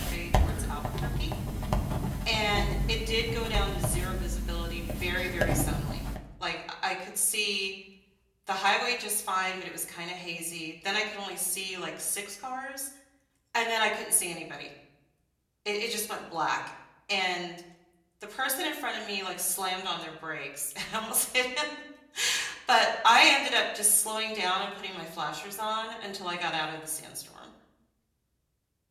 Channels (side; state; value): both; identical; correlation 1.00